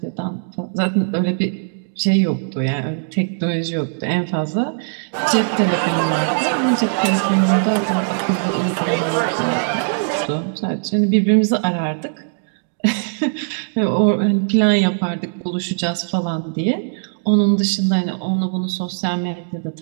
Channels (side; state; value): left; silent; digital silence